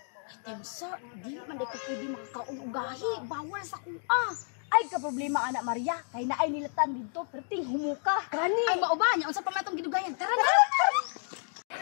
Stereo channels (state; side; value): silent; right; 57 dB below the other